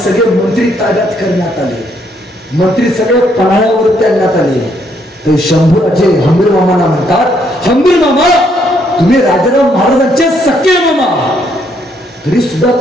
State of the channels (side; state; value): both; normal; correlation 0.71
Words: मंत्री ताब्यात करण्यात आले. मंत्री सगळे पन्हाळ्यावर आणण्यात आले. तर शंभूराजे हंबीर मामांना म्हणतात, हंबीर मामा तुम्ही राजाराम महाराजांचे सख्खे मामा, तरी सुद्धा